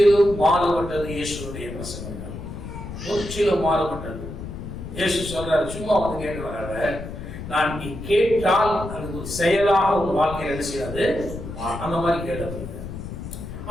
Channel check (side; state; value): left; noise; rumble, 9 dB below the sound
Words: மாறுபட்டது இயேசுடைய பிரசங்கங்கள், முற்றிலும் மாறுபட்டது. இயேசு சொல்றாரு, சும்மா வந்து கேட்கிறாங்க, நான் நீ கேட்டால் அது ஒரு செயலாக ஒரு வாழ்க்கையில் என்ன செய்யாது, அந்த மாதிரி கேட்டது.